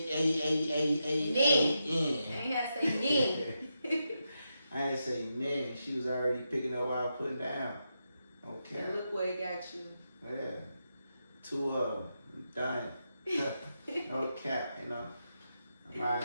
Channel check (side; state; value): both; inverted; correlation -0.86